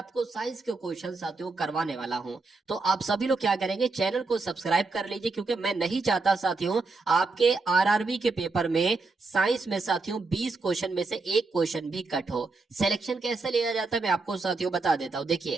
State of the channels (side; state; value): left; quieter; 3.8 dB